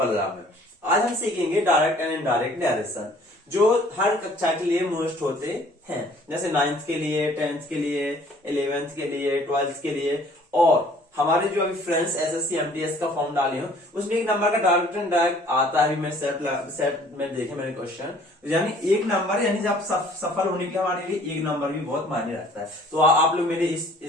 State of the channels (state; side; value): normal; both; correlation 0.55